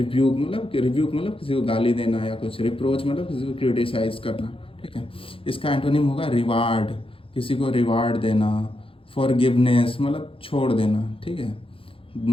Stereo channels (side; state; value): right; late; 0.27 ms